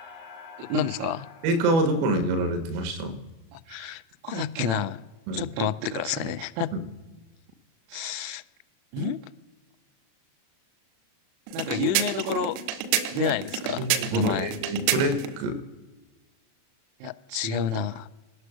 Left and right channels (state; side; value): late; left; 37 ms